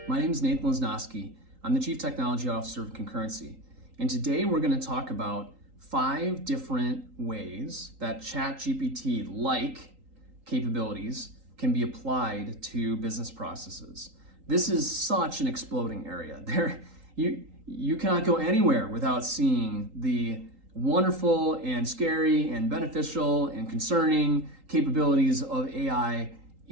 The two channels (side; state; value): left; late; 3.8 ms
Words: My name is Nathan Lesnowski. I'm the Chief Technology Officer of Concurrency. And today we're going to talk about 5 different ways that ChatGPT-like capabilities can be applied to business processes. This is such an exploding area. You cannot go anywhere without seeing the wonderful and scary and beneficial and concerning capabilities of AI